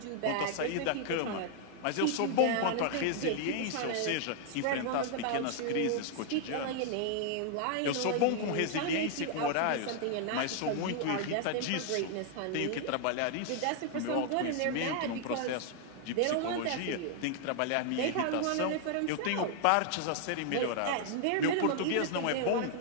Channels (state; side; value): different; both; correlation 0.00